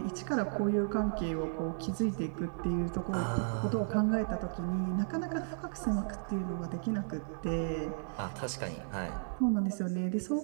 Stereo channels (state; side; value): silent; left; digital silence